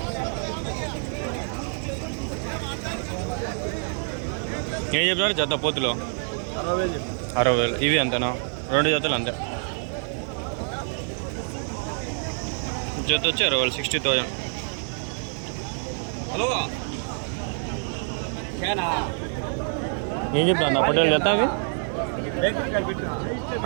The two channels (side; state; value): left; silent; 56 dB below the other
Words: ఏం చెప్తారు జత పోతులో? 60,000. ఇవి అంతేనా? 2 జతలు అంతే. జత వచ్చి 60,000 60,000. హలో ఏం చెప్తా అన్న పొట్టేలు జత అవి